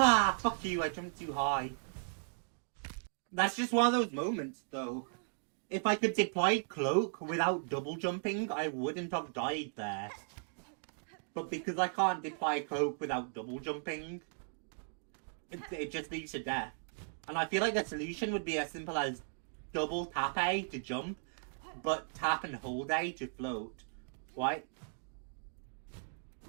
fuck you, I jumped too high. That's just one of those moments, though. If I could deploy Cloak without double jumping, I wouldn't have died there. But because I can't deploy Cloak without double jumping, it just leads to death. And I feel like the solution would be as simple as double tap A to jump, but tap and hold A to float. Right?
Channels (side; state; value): left; silent; digital silence